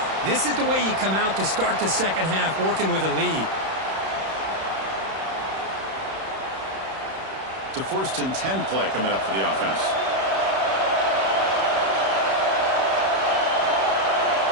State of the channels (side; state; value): left; late; 31 ms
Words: This is the way you come out to start the second half, working with a lead. It's a 1st and 10 play coming up for the offense.